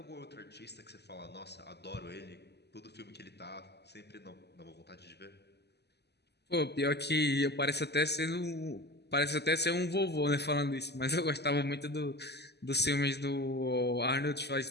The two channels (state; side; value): late; right; 0.49 ms